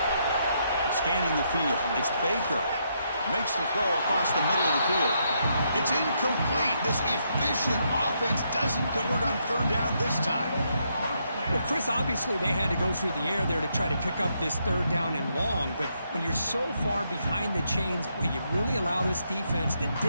Scanning the field. It's Baker. Makes the throw across the middle of the field. It's incomplete. This efficient offense doesn't convert on third down this time. Well, Chris, obviously they had to go through the air there to try to pick up this third down and long, but when you're so far behind the chains, well, you really allow this defense to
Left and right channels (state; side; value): inverted; both; correlation -0.77